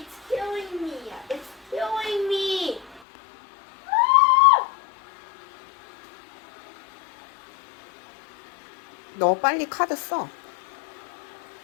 killing me. It's killing me. 너 빨리 카드 써.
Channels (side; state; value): right; drops out; at 3.0 s